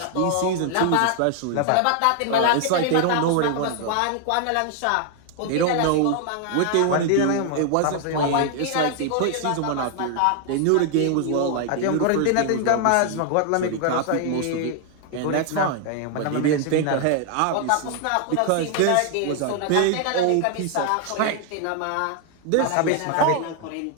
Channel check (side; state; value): both; different; correlation 0.00